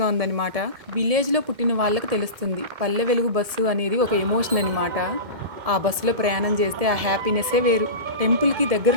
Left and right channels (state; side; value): late; left; 1.7 ms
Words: ఉందనమాట. విలేజ్‌లో పుట్టిన వాళ్ళకి తెలుస్తుంది. పల్లె వెలుగు బస్సు అనేది ఒక ఎమోషన్ అనమాట. ఆ బస్సులో ప్రయాణం చేస్తే ఆ హ్యాపీనెస్సే వేరు. టెంపుల్‌కి